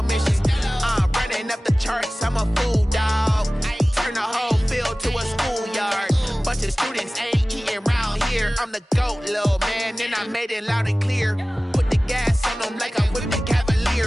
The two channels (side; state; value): both; normal; correlation 0.98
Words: mission. Running up the charts, I'm a fool, dog. Turn the whole field to a schoolyard. Bunch of students ain't eating round here. I'm the GOAT, little man, and I made it loud and clear. Put the gas on them like I'm with the